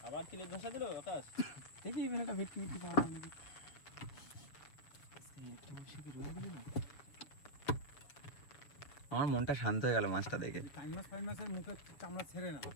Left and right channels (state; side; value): late; right; 6.8 ms